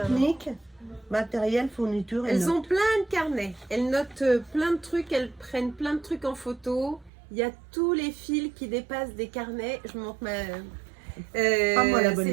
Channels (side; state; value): left; drops out; at 7.1 s